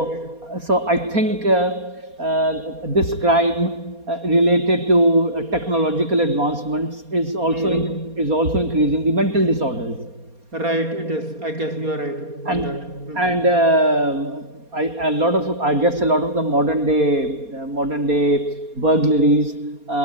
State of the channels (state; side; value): late; left; 4.2 ms